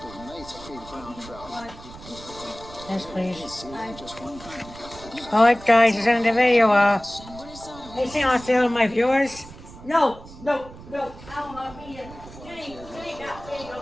of nice big brown trout. Yes, please. See, just one pound. Alright, guys, it's in the video. What are some Hey, see on sale, my viewers? No. I don't want to be in. Jenny, there you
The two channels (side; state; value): right; noise; rumble, 17 dB below the sound